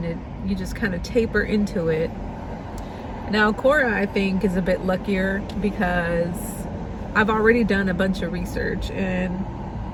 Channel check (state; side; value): identical; both; correlation 1.00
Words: you just kind of taper into it. Now Cora, I think, is a bit luckier because I've already done a bunch of research, and